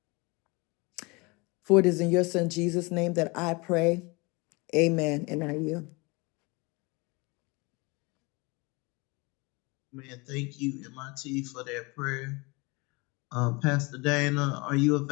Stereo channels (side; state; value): right; quieter; 27.1 dB